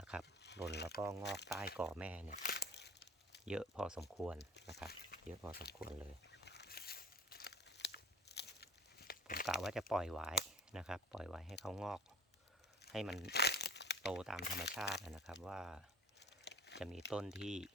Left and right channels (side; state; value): both; normal; correlation 0.45